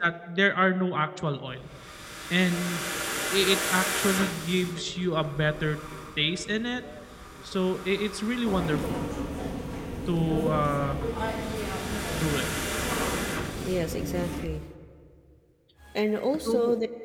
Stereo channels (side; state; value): both; identical; correlation 1.00